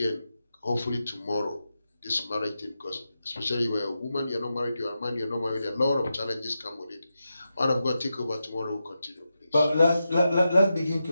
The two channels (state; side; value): inverted; both; correlation -0.90